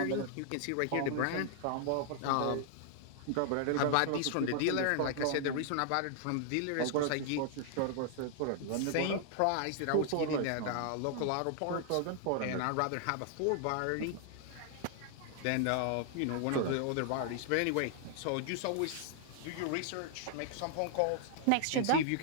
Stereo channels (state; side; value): different; both; correlation 0.00